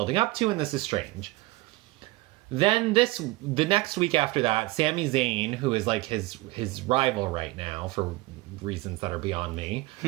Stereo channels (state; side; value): quieter; left; 20.5 dB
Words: up to and this is strange. Then the next week after that, Sami Zayn, who is like his rival right now for reasons that are beyond me,